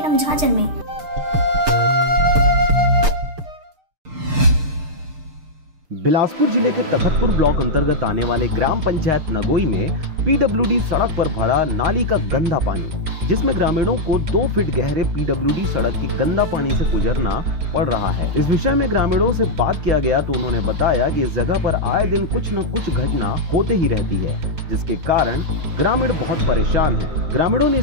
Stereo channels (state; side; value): late; left; 6.6 ms